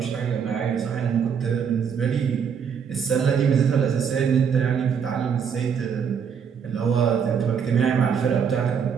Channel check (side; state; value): left; quieter; 7.1 dB